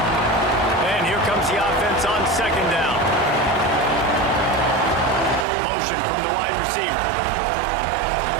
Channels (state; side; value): drops out; left; at 5.5 s